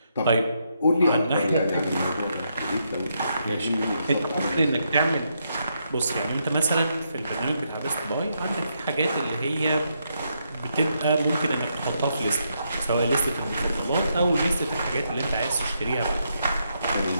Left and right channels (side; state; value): both; inverted; correlation -0.79